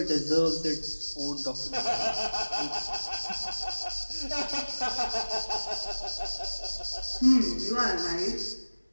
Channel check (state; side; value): inverted; both; correlation -1.00